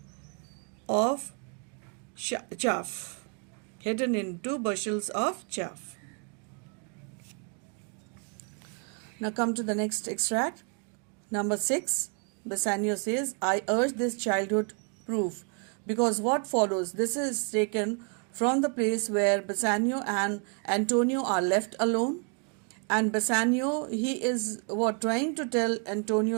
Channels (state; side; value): quieter; left; 38.7 dB